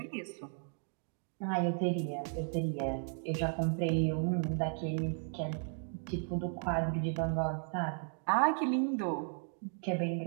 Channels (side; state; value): left; silent; 54 dB below the other